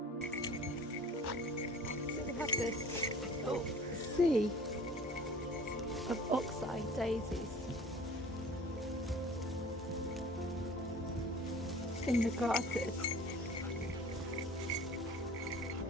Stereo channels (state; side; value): normal; both; correlation 0.45